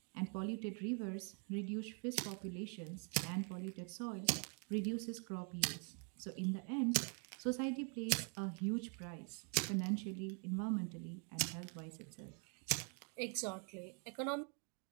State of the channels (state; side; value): quieter; left; 39.5 dB